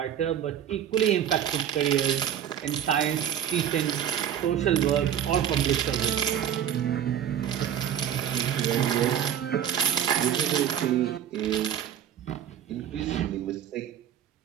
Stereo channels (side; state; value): left; quieter; 9.8 dB